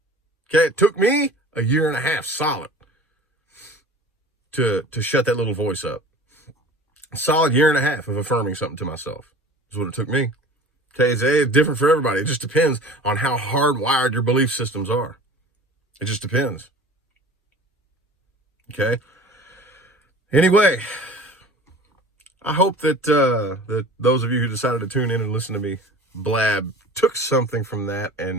Okay, it took me a 1.5 years solid to shut that little voice up. A solid 1.5 years of affirming something to myself is what it took me. Okay, it's different for everybody. It just depends on how hardwired your belief systems are. It just depends. Okay. Anyway, I hope that that those of you who decided to tune in and listen to me blab took something from that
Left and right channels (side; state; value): both; normal; correlation 0.42